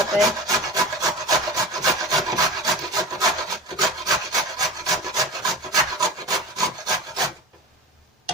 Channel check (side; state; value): both; normal; correlation 0.30